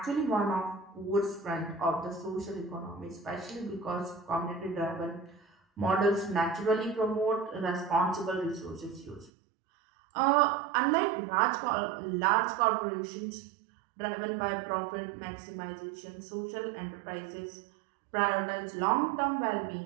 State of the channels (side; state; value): left; drops out; at 9.3 s